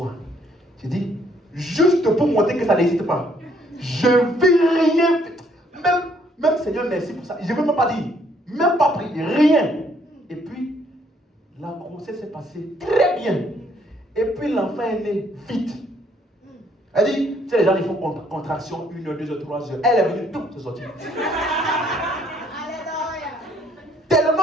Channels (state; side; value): normal; both; correlation 0.66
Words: J'ai dit, juste pour montrer que ça n'existe pas. Je ne vais rien. Même Seigneur, merci pour ça. Je ne veux même pas dire, même pas prier, rien. Et puis, la grossesse s'est passée très bien. Et puis, l'enfant est né vite. Elle dit, tu sais, les gens, ils font contraction 1 heure, 2 heures, 3 heures. Elle est venue, tout se sortir.